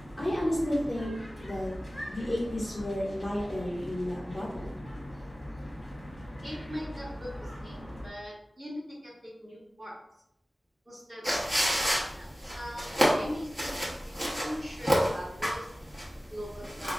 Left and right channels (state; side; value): normal; both; correlation 0.96